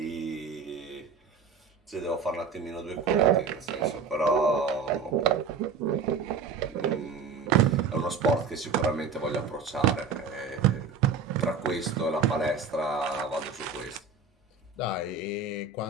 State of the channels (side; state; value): left; quieter; 5.3 dB